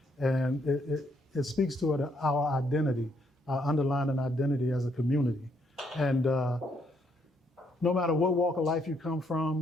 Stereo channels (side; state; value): both; normal; correlation 0.72